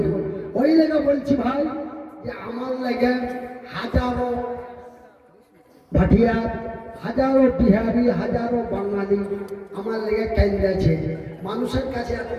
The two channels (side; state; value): both; identical; correlation 1.00